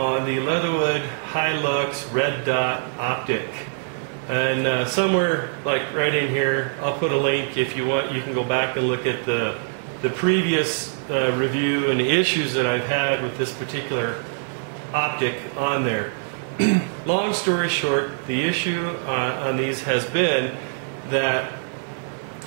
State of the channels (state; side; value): silent; left; 57 dB below the other